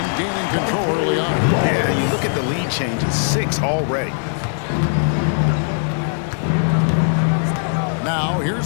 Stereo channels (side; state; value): right; silent; digital silence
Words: gaining control early on. Yeah, you look at the lead changes, 6 already. Now,